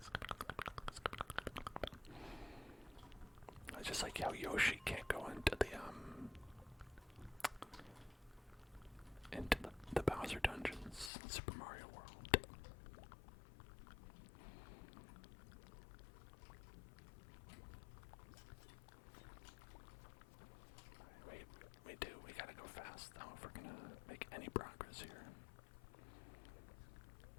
It's just like how Yoshi can't go into the Bowser dungeons in Super Mario World. We gotta go fast though if we're gonna make any progress here.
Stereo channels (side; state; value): right; drops out; at 11.1 s